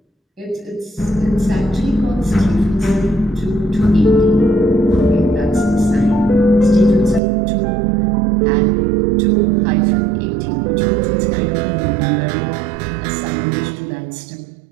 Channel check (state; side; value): drops out; left; at 7.2 s